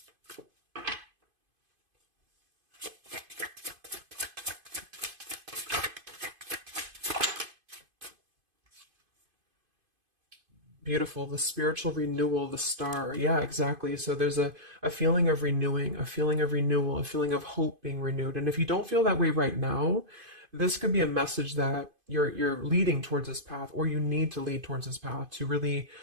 Beautiful. The spiritual renewal, the star. Yeah, exactly. So there's a feeling of renewing, a feeling of renewal, a feeling of hope being renewed. And if you don't feel that way right now, this could be a message that you're leading towards this path, or you need to lead towards this path to really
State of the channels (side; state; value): left; late; 2.5 ms